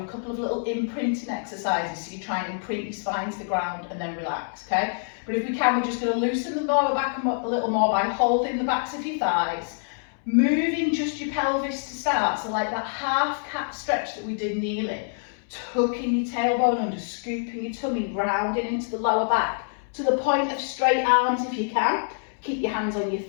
a couple of little imprinting exercises so you try and imprint your spine to the ground and then relax, okay? But if we can, we're just going to loosen the lower back a little more by holding the backs of your thighs. Moving just your pelvis to start, so like that half cat stretch that we did kneeling. Tucking your tailbone under, scooping your tummy, rounding into the lower back. To the point of straight arms if you can. Keep your hands on your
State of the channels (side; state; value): right; silent; 61 dB below the other